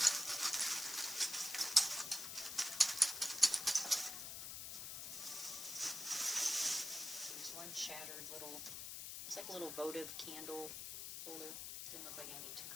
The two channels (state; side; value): noise; left; hiss, 6 dB below the sound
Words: there's one shattered little, it's like a little votive candle holder. Didn't look like anything too